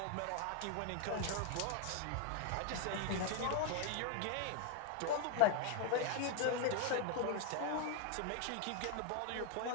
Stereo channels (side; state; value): both; different; correlation 0.01